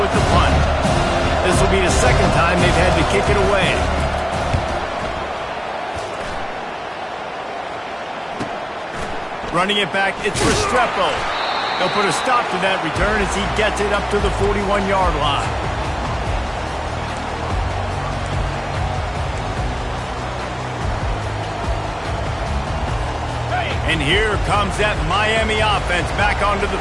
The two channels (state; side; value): identical; both; correlation 1.00